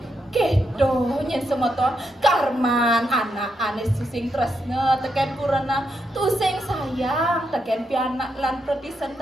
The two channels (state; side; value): normal; both; correlation 0.82